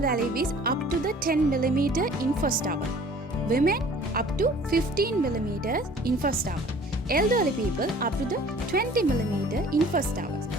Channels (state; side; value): normal; both; correlation 0.50